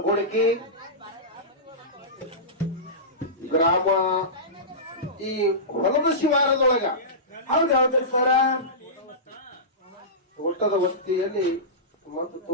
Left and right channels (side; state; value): both; normal; correlation -0.19